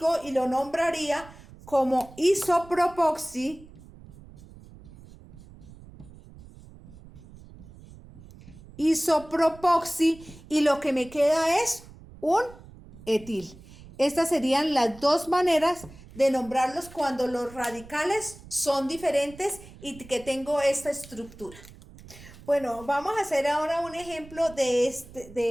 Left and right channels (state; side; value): noise; right; rumble, 20 dB below the sound